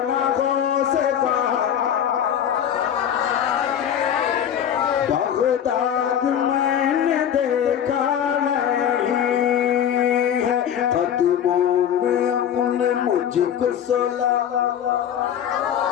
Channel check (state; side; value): quieter; right; 9.3 dB